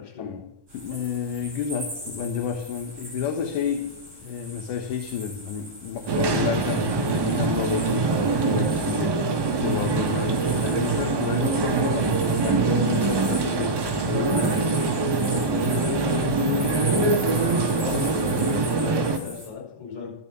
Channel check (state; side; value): late; left; 1.2 ms